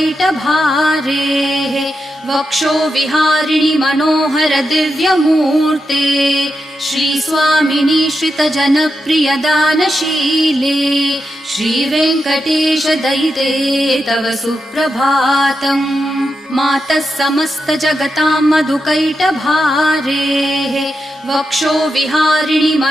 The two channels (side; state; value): both; normal; correlation 0.87